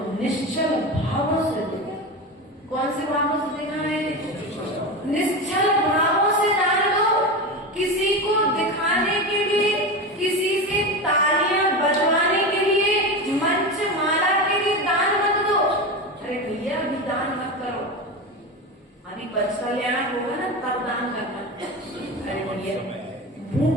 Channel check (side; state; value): both; normal; correlation 0.22